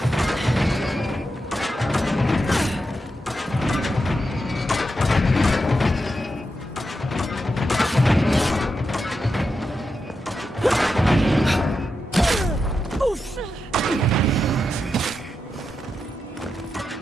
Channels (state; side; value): normal; both; correlation 0.87